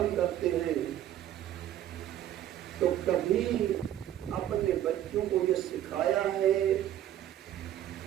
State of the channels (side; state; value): left; quieter; 11.8 dB